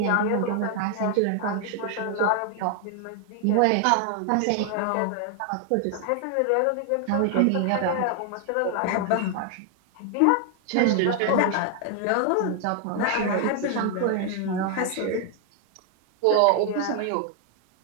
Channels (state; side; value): different; both; correlation 0.00